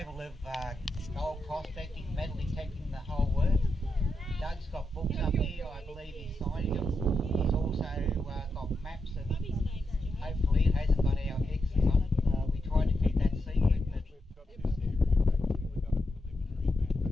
of gold prospecting, metal detecting, the whole works. Doug's got books up here, I believe he's signing them. He's also got maps, and hopefully it hasn't got our X's on it. We tried to keep that secret, but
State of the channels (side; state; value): both; normal; correlation 0.86